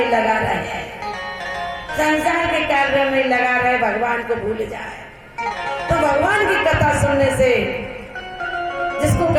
लगा रहे, संसार के कार्य में लगा रहे, भगवान को भूल जाए। तो भगवान की कथा सुनने से जिसको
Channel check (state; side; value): identical; both; correlation 1.00